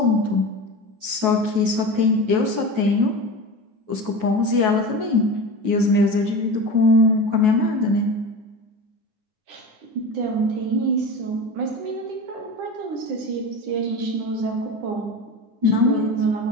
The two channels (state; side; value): late; left; 9.3 ms